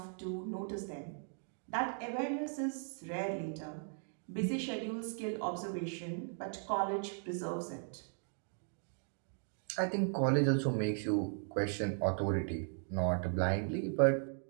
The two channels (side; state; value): left; silent; 53 dB below the other